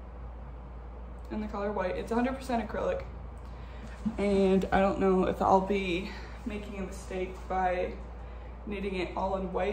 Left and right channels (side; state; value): both; identical; correlation 1.00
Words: in the color white. It's 100% acrylic, and I don't know if I'll be making a mistake by knitting it all in